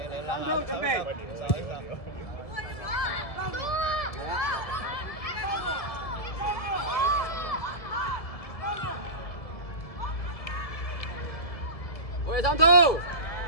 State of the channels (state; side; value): late; right; 1.7 ms